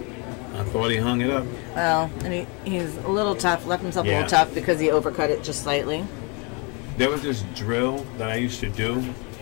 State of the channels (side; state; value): right; quieter; 32.5 dB